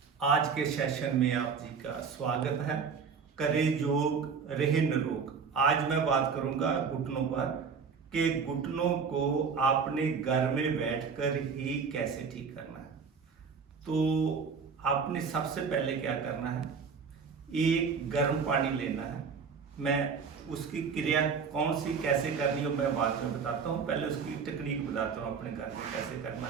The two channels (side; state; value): left; quieter; 5.8 dB